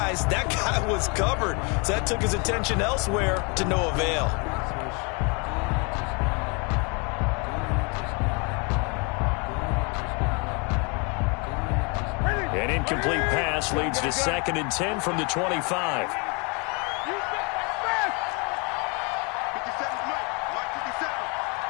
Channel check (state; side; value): quieter; right; 32.3 dB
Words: that guy was covered. So that took his attention elsewhere to no avail. An incomplete pass leads to 2nd and 10 from the 25.